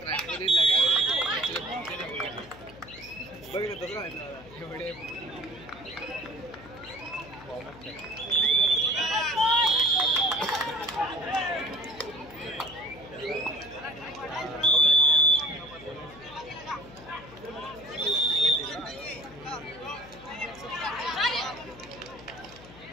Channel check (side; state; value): left; noise; hum, 19 dB below the sound